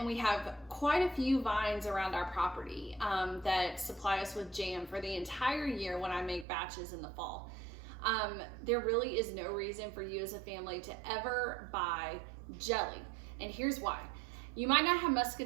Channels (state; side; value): drops out; left; at 6.5 s